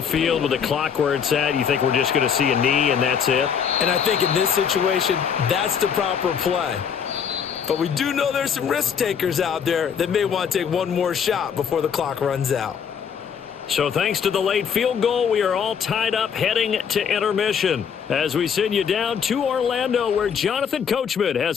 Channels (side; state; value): right; quieter; 7.3 dB